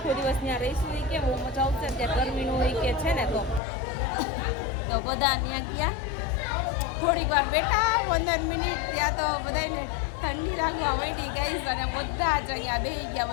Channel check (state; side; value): drops out; right; at 3.6 s